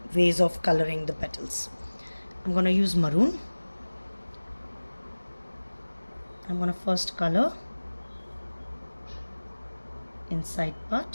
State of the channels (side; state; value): both; inverted; correlation -1.00